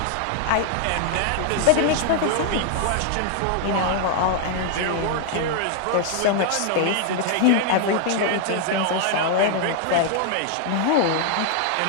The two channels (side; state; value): both; different; correlation 0.00